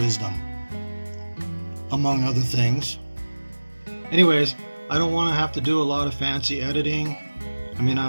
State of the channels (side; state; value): both; inverted; correlation -1.00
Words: among other things. Anyways, I don't want to have to do a lot of fancy editing. I mean, I